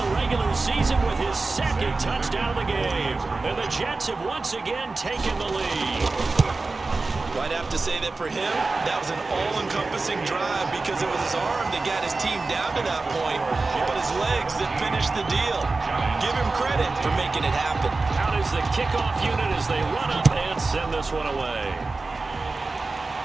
regular season with his second touchdown of the game. And the Jets have once again taken the lead. Well, I'd have to say that for him, that was an all-encompassing drive because it was his arm that got his team down to that point, but his legs that finished the deal. Give him credit for making it happen. Out is the kickoff unit as they run up and send this one away.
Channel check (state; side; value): quieter; left; 3.6 dB